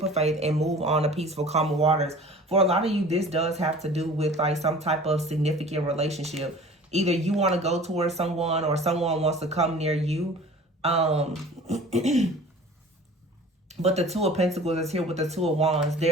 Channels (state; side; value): normal; both; correlation 0.44